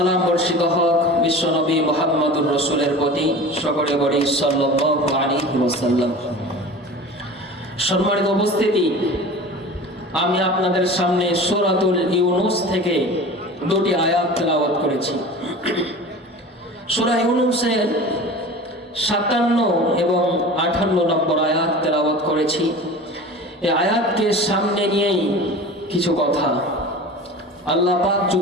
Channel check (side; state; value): both; normal; correlation 0.36